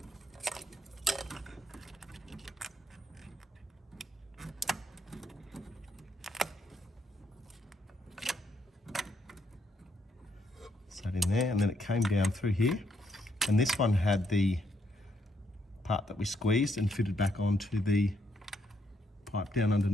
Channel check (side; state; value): both; normal; correlation 0.74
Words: Sat in there, and then it came down through here, and this one had the part that we squeezed and fitted back onto the pipe down